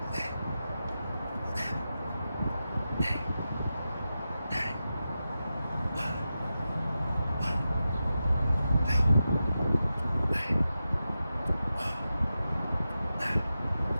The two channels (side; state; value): both; inverted; correlation -0.91